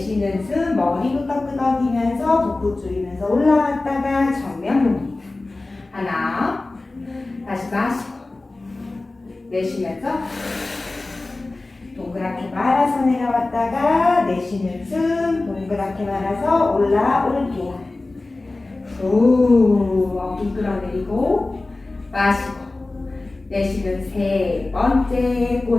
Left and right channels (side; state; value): right; quieter; 3.1 dB